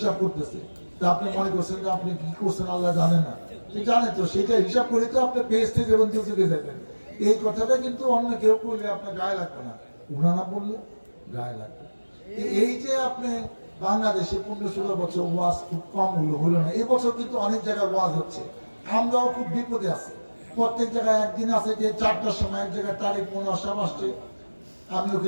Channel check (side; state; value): both; inverted; correlation -1.00